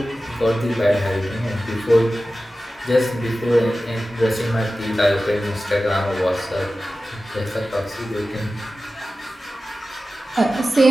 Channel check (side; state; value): both; normal; correlation 0.95